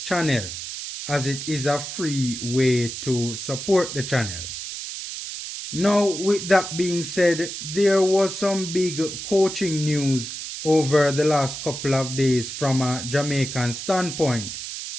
as it is a free way to support the channel. Now, with that being said, there was some big coaching news over the last couple of days from a Jamaican standpoint.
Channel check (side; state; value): right; noise; hiss, 7 dB below the sound